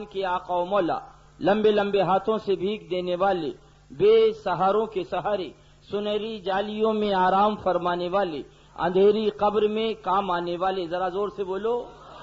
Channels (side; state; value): both; identical; correlation 1.00